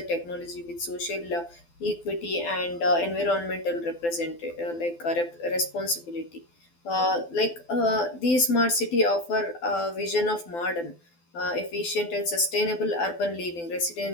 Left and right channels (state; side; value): late; right; 12 ms